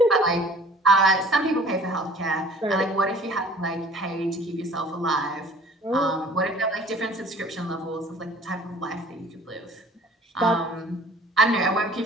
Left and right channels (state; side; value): normal; both; correlation 0.50